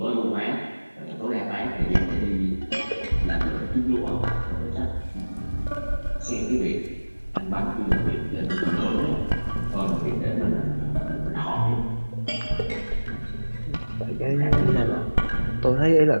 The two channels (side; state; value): both; inverted; correlation -1.00